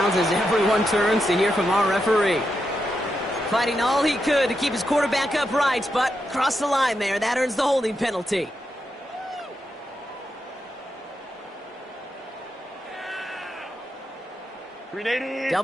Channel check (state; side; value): normal; both; correlation 0.85